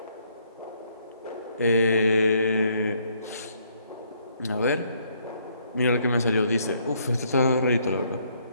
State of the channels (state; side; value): inverted; both; correlation -0.69